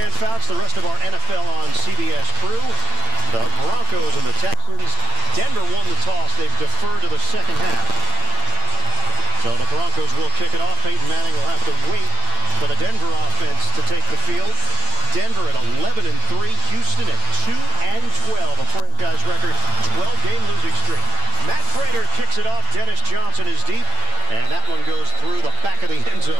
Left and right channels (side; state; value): left; late; 8.9 ms